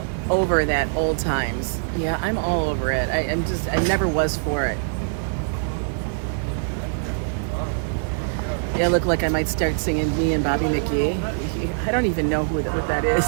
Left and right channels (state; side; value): silent; left; digital silence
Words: over that old times. Yeah, I'm all over it. I never was for it. Yeah, I look like I might start singing Me and Bobby McGee. I don't even know what that is.